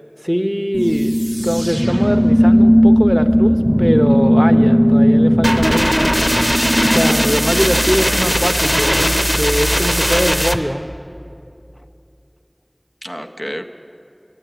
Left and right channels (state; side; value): identical; both; correlation 1.00